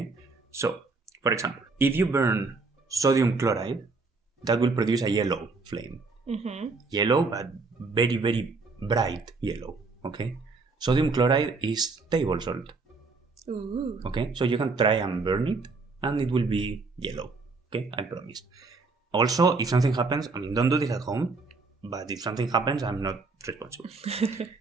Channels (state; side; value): quieter; left; 4.0 dB